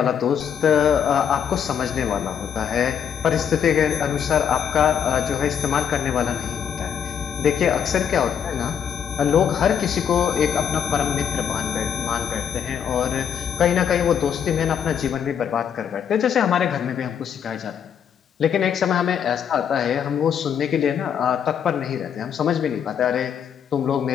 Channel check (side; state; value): right; quieter; 8.2 dB